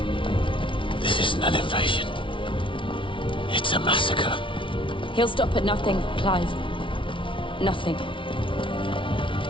This isn't an invasion. It's a massacre. He'll stop at nothing, Clive. Nothing.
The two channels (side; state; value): right; late; 0.25 ms